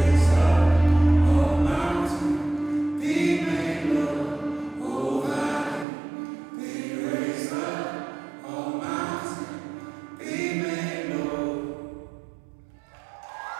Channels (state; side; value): drops out; left; at 5.9 s